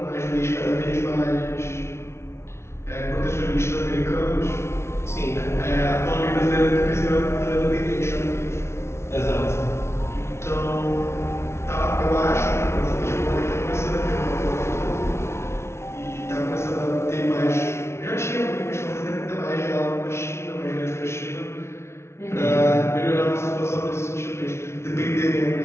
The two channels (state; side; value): late; right; 0.13 ms